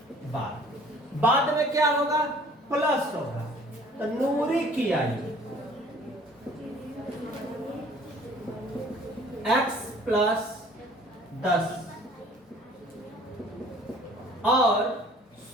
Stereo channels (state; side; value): normal; both; correlation 0.52